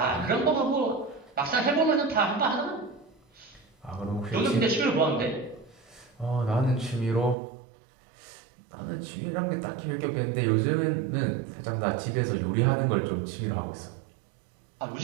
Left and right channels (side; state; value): left; drops out; at 7.4 s